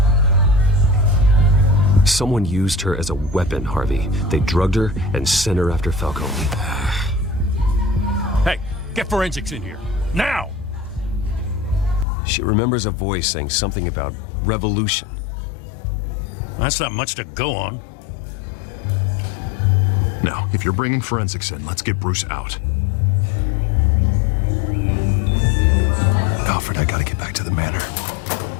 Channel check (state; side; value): drops out; right; at 12.1 s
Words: Someone used her as a weapon, Harvey. They drugged her and sent her after Falcone. Hey, get forensics in here. Now! She remembers a voice saying something about revolution. That's not much to go on. Now, if you're bringing forensics in, let's get Bruce out. Alfred, I gotta get back to the manor.